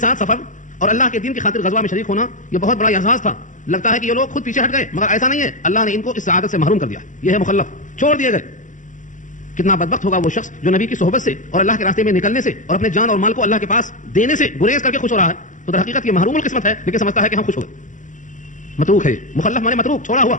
سفر اور اللہ کے دین کی خاطر غزوہ میں شریک ہونا یہ بہت بڑا اعزاز تھا. لگتا ہے کہ یہ لوگ خود پیچھے ہٹ گئے، مگر ایسا نہیں ہے. اللہ نے ان کو اس سعادت سے محروم کر دیا. یہ ہے مخلف، چھوڑ دیے گئے. کتنا بدبخت ہوگا وہ شخص جو نبی کی صحبت سے اور اللہ کے راستے میں نکلنے سے اور اپنے جان اور مال کو اللہ کے پاس دینے سے گریز کر کے خوش ہو رہا ہے. تو در حقیقت یہ محروم القسمت ہے، لیکن سمجھتا ہے کہ ہم خوش ہو گئے. متروک ہے. مخلف مانے متروک، چھوڑا ہوا،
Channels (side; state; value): right; late; 0.37 ms